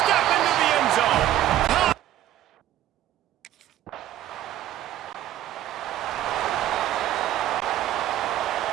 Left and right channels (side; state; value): left; quieter; 12.8 dB